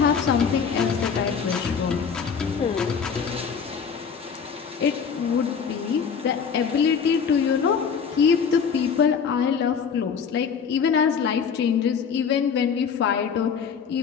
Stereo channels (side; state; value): right; quieter; 6.5 dB